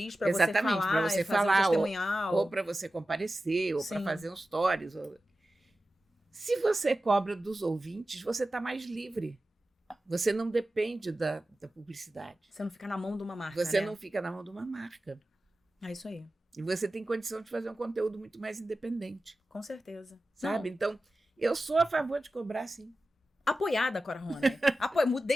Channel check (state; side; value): normal; both; correlation 0.94